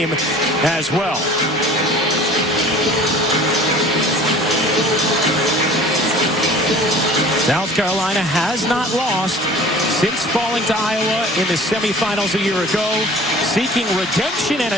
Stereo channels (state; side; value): normal; both; correlation 0.45